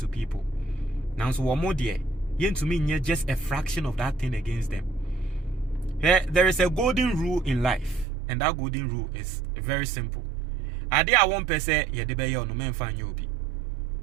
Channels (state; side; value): drops out; left; at 8.1 s